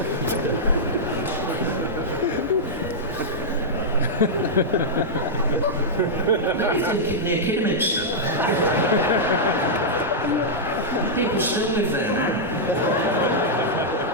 maybe thinking near Kidderminster. People still live there now.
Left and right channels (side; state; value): both; normal; correlation -0.09